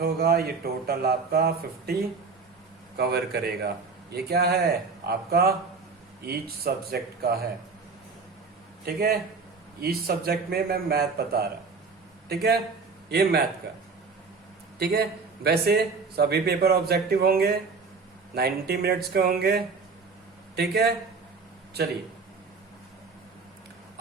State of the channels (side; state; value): left; quieter; 4.6 dB